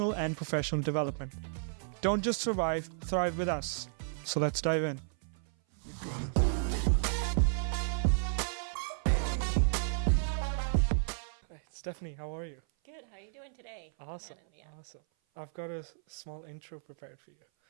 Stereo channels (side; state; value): left; silent; 56 dB below the other